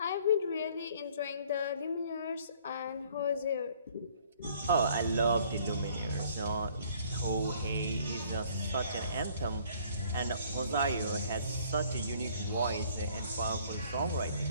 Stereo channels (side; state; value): both; inverted; correlation -0.58